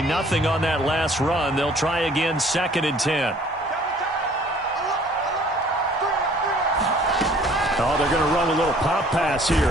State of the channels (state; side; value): normal; both; correlation 0.55